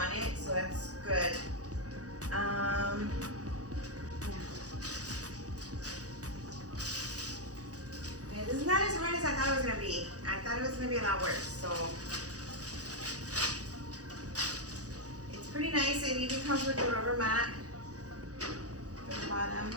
it, so that's good. Okay, this is not as hard as I thought it was gonna be. I thought it was gonna be a lot worse, so. It's pretty nice. It even comes with a rubber mat at the bottom.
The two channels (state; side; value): late; left; 0.67 ms